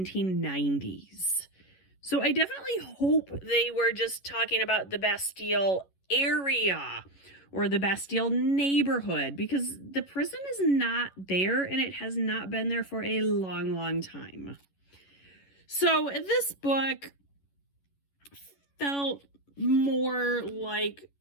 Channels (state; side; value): late; right; 11 ms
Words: So I definitely hope they were just talking about the Bastille area or the Bastille neighborhood, because the prison is not there and it has not been there for a long, long time. So this book felt more like